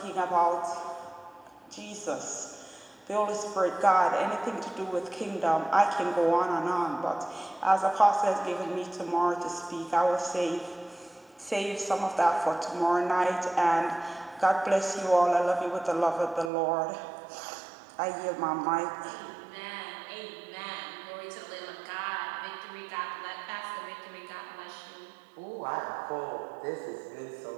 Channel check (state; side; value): drops out; left; at 16.5 s